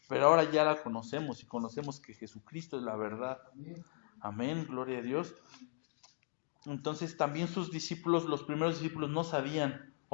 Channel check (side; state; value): right; silent; digital silence